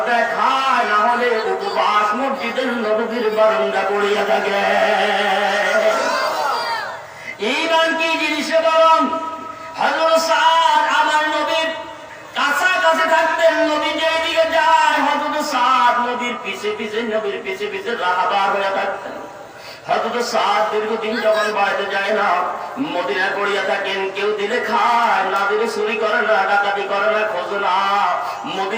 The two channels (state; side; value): identical; both; correlation 1.00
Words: দেয় খায়, না হলে উপবাস মসজিদের নববীর বারান্দা পড়িয়া থাকে। ঈমান কি জিনিস বলুন? হযরত সাদ আমার নবীর কাছাকাছি থাকতেন, নবী যেদিকে যায় হযরত সাদ নবীর পিছে পিছে রাহাবার হয়ে থাকতেন। হযরত সাদ দীর্ঘদিন যখন বাড়িতে যায় না, মদিনায় পড়িয়া থাকেন। কেউ দিলে খায়, না দিলে চুরি করে না, ডাকাতি করে না, খোঁজ না,